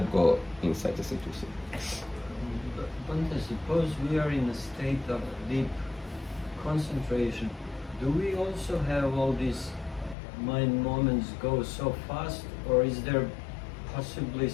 go in such a situation. Bhante, suppose we are in a state of deep concentration. Do we also have all these mind moments go so fast, or is there possibly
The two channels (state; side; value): drops out; right; at 10.2 s